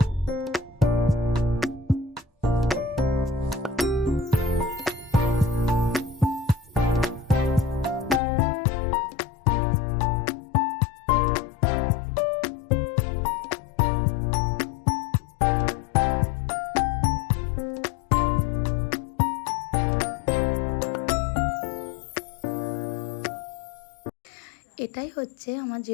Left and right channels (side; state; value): right; drops out; at 8.2 s